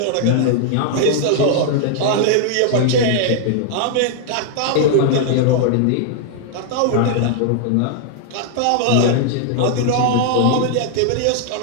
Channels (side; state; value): both; different; correlation 0.00